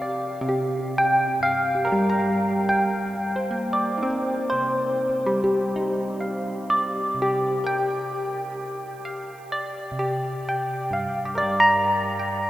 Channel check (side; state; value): right; noise; hiss, 27 dB below the sound